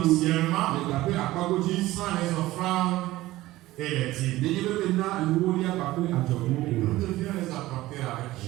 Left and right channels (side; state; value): left; quieter; 17.1 dB